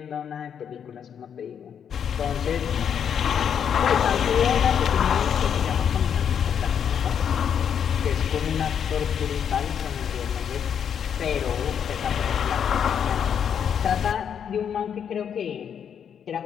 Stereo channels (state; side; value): quieter; right; 8.1 dB